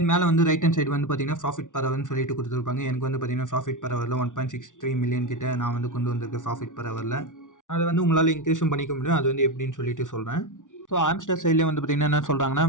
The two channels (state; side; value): late; right; 0.87 ms